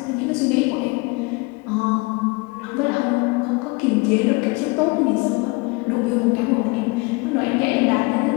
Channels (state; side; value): quieter; right; 26.6 dB